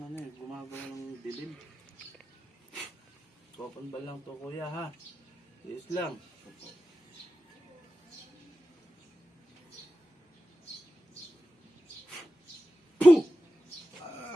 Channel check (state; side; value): normal; both; correlation 0.92